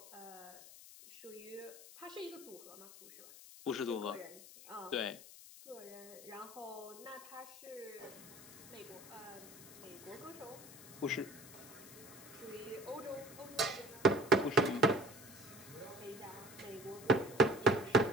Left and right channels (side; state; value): left; noise; hiss, 17 dB below the sound